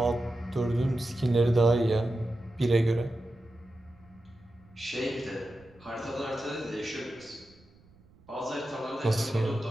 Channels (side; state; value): right; noise; rumble, 28 dB below the sound